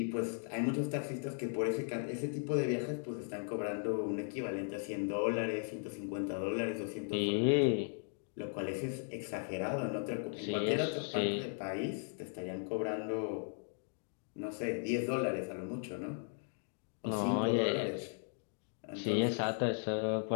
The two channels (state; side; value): silent; right; 53 dB below the other